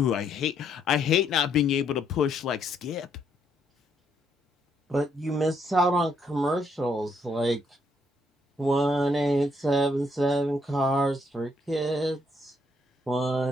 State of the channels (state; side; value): normal; both; correlation 0.71